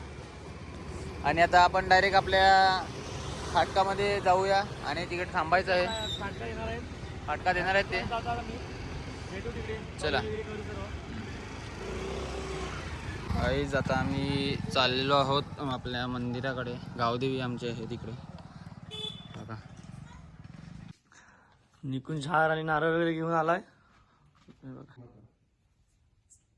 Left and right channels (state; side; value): identical; both; correlation 1.00